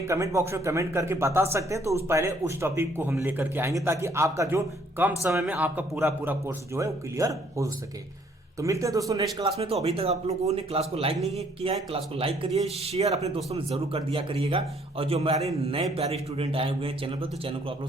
कमेंट बॉक्स में कमेंट करके बता सकते हैं। तो पहले उस टॉपिक को हम लेकर के आएंगे, ताकि आपका जो कम समय में आपका पूरा कोर्स जो है वो क्लियर हो सके। तो मिलते हैं दोस्तों नेक्स्ट क्लास में। तो अभी तक आप लोगों ने क्लास को लाइक नहीं किया है, क्लास को लाइक करिए, शेयर अपने दोस्तों में जरूर कर दिया करिएगा। और जो हमारे नए प्यारे स्टूडेंट आए हुए हैं चैनल पर, तो चैनल को आप लोग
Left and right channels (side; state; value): both; normal; correlation 0.63